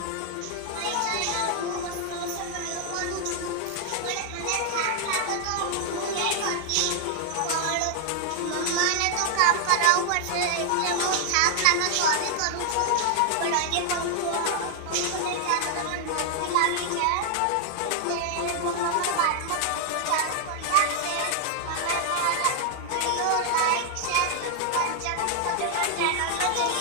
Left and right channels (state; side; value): different; both; correlation 0.00